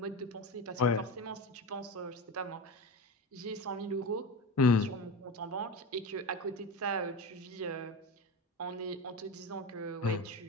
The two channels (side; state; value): both; normal; correlation 0.25